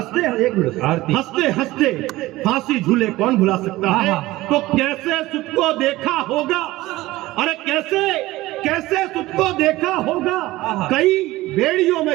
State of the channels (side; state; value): left; quieter; 18.1 dB